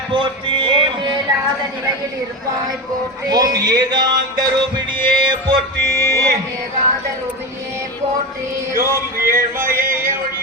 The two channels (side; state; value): both; normal; correlation 0.21